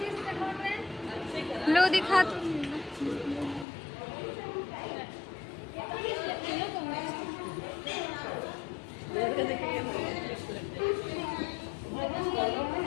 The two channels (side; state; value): right; drops out; at 3.7 s